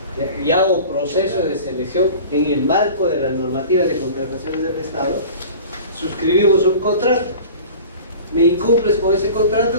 y hago proceso de selección en el marco de la normativa de contrataciones del Estado, suscribimos un contrato, me incumples con ese contrato,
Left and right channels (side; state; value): both; inverted; correlation -0.40